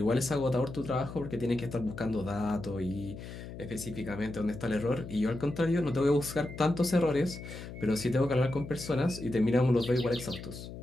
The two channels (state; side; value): noise; left; hum, 11 dB below the sound